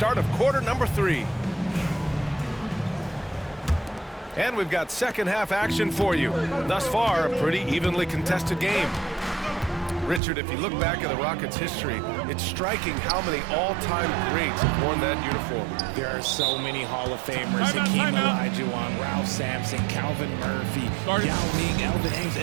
of quarter number 3. And we've got second half action for you. Thus far, a pretty evenly contested game. Richard, if you look back at the Rockets' history, it's striking how many all-time greats have worn that uniform. There are so many Hall of Famers. Hakeem Olajuwon, Ralph Sampson, Calvin Murphy, Yao Ming, Elvin Hayes,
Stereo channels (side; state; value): left; drops out; at 10.2 s